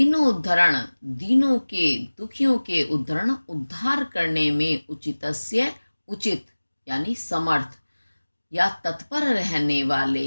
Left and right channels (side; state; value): both; inverted; correlation -1.00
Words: उद्धरण दीनों के दुखियों के उद्धरण उद्धार करने में, उचितस्य उचित यानी समर्थ या तत्पर रहने